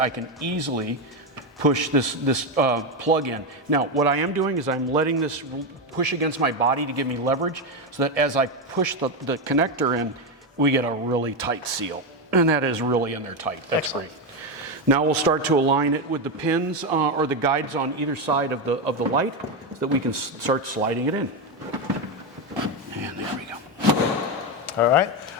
can easily push this plug in. Now, what I am doing is I'm letting this push against my body to give me leverage, so that as I push the connector in, we get a really tight seal. And that is really in there tight. That's excellent. Great. Now we'll start to align it with the pins or the guides on either side of the light, so that we can start sliding it in. And there we go. All right.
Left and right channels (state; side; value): normal; both; correlation 0.10